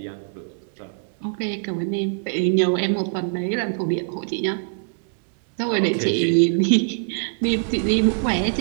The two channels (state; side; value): silent; left; digital silence